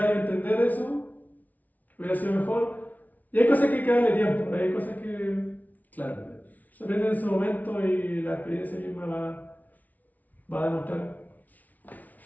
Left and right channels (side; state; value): right; late; 0.076 ms